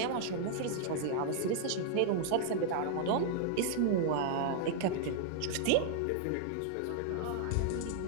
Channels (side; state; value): both; different; correlation -0.01